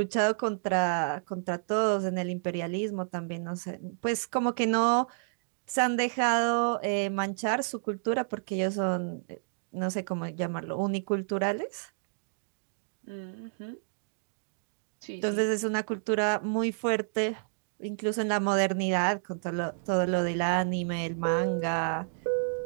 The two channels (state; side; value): silent; left; digital silence